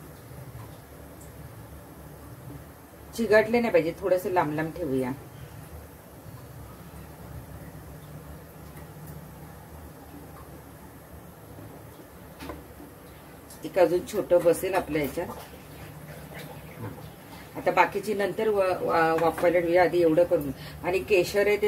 चिघटले नाही पाहिजे, थोडस लांब लांब ठेवूया. एक अजून छोटं बसेल आपल्या याच्यात. आता बाकीची नंतर वाफवायला ठेवूया. आधी एवढं करून. आणि केशर आहे ते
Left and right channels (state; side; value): identical; both; correlation 1.00